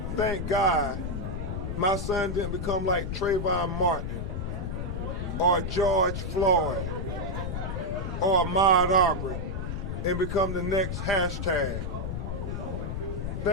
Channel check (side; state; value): left; noise; rumble, 4 dB below the sound